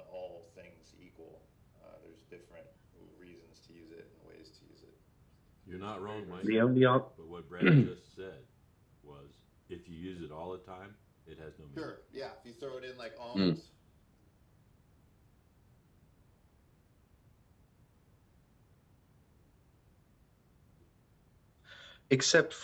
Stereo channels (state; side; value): identical; both; correlation 1.00